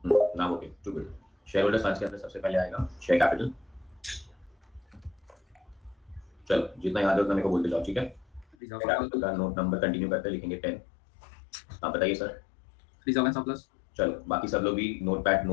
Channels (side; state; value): right; drops out; at 8.6 s